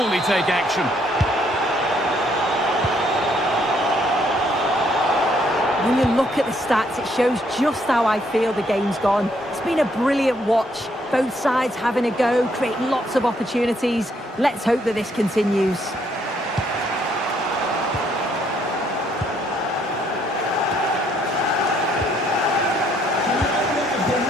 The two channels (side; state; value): both; normal; correlation 0.69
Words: take action. When you look at the stats, it shows just how I feel the game's gone. It's been a brilliant watch. Both sides having a go, creating lots of opportunities. Let's hope that this continues. The owner of the